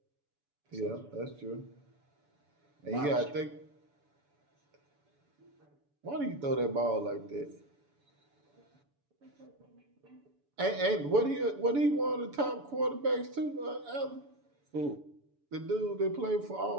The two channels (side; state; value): left; late; 7.0 ms